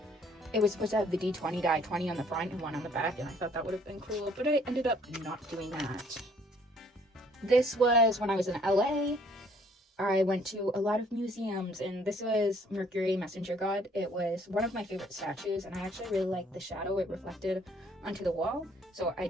it was supposed to have the D20 die 20 on the front and 1 on the back, and I thought that would have been cool, but I ended up not doing that. This was when I was in LA. I went to a lot of museums, and this was Mercury, messenger god. It was one of my favorite statues, and I actually really liked the shadow it reflected onto the wall. So I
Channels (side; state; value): both; normal; correlation 0.61